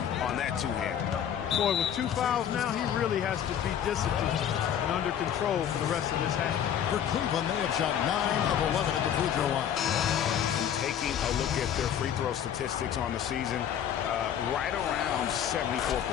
on that 2-hand. Boy, with 2 fouls now, he really has to be disciplined and under control for the rest of this half. For Cleveland, they have shot 9 of 11 at the free throw line. Taking a look at their free throw statistics on the season, right around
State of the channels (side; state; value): right; quieter; 9.4 dB